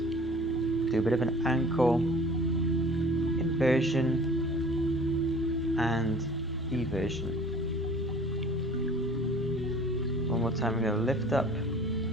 Do a bit of an ankle inversion and eversion. One more time, we're gonna lift up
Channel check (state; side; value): normal; both; correlation 0.46